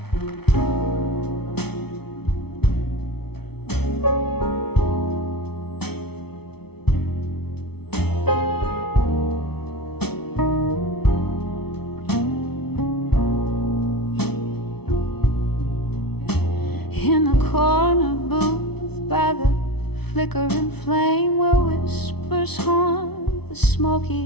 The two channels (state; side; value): late; right; 0.97 ms